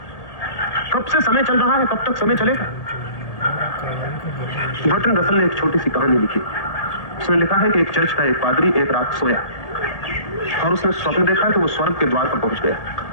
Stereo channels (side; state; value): right; late; 1.8 ms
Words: कब से समय चल रहा है, कब तक समय चलेगा? बर्ट्रैंड रसल ने एक छोटी सी कहानी लिखी। उसने लिखा है कि एक चर्च का एक पादरी एक रात सोया और उसने स्वप्न देखा कि वो स्वर्ग के द्वार पर पहुंच गया,